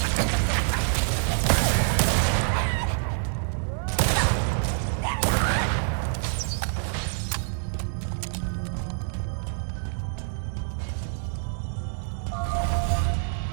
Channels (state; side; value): silent; left; digital silence